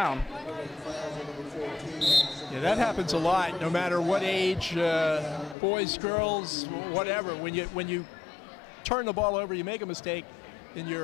Yeah, that happens a lot, no matter what age, boys, girls, whatever. When you turn the ball over, you make a mistake, in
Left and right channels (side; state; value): right; drops out; at 5.6 s